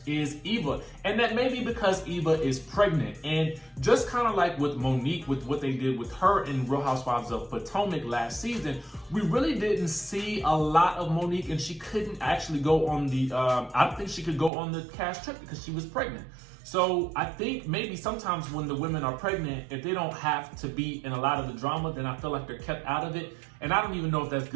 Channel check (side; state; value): left; drops out; at 14.5 s